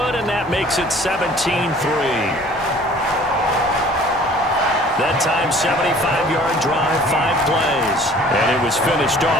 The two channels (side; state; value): both; normal; correlation 0.51